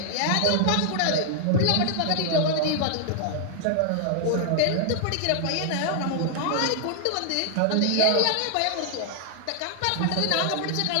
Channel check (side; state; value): both; different; correlation 0.00